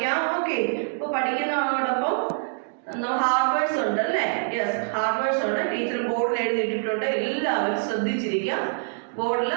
ഓക്കെ, ഇപ്പൊ പഠിക്കുന്നതോടൊപ്പം ഹാർഡ് വേർഡ്സ് ഉണ്ട് അല്ലേ? യെസ്, ഹാർഡ് വേർഡ്സ് ഉണ്ട്. ടീച്ചർ ബോർഡിൽ എഴുതിയിട്ടുണ്ട്. എല്ലാവരും ശ്രദ്ധിച്ചിരിക്കാം. ബോർഡിൽ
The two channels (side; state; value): left; silent; digital silence